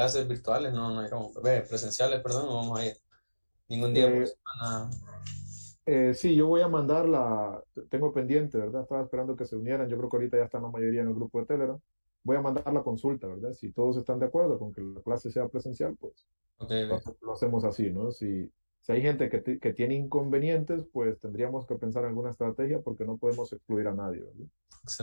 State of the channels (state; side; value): inverted; both; correlation -1.00